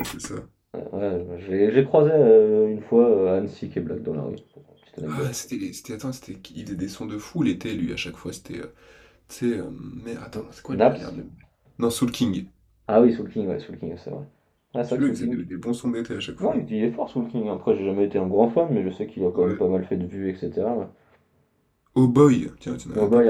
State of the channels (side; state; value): both; identical; correlation 1.00